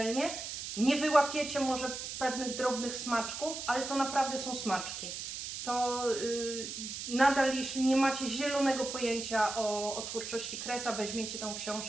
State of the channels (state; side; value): noise; right; hiss, 7 dB below the sound